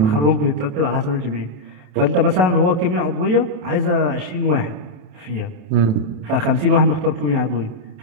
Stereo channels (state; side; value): late; left; 27 ms